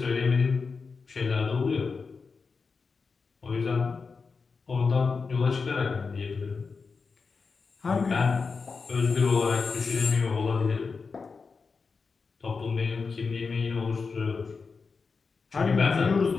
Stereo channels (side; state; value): right; quieter; 4.8 dB